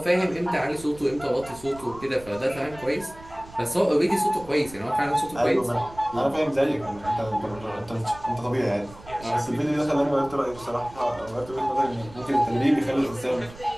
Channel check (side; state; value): right; noise; rumble, 19 dB below the sound